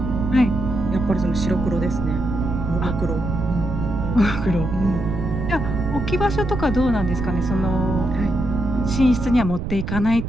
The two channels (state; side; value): noise; right; rumble, 4 dB below the sound